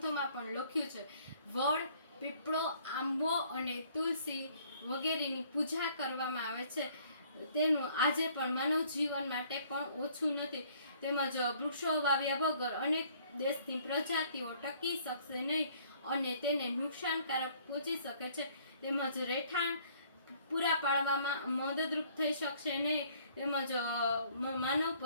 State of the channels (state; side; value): inverted; both; correlation -0.59